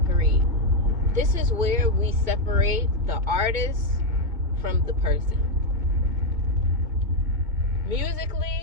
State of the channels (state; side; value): late; left; 2.2 ms